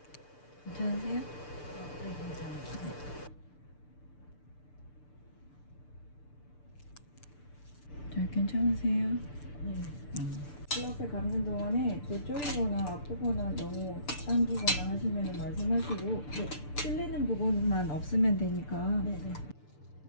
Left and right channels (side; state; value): right; late; 6.8 ms